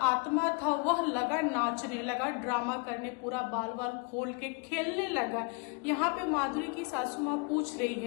आत्मा था वह लगा नाचने लगा, ड्रामा करने, पूरा बाल बाल खोल के खेलने लगा। यहाँ पे माधुरी की सासू माँ पूछ रही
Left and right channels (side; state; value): right; quieter; 32.0 dB